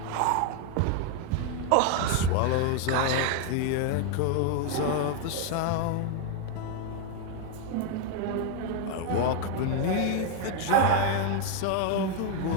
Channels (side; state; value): both; different; correlation 0.01